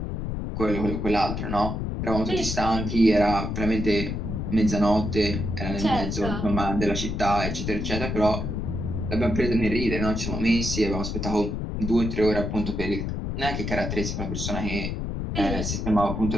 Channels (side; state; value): left; noise; rumble, 3 dB below the sound